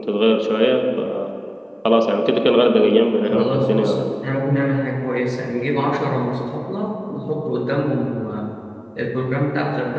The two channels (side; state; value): both; identical; correlation 1.00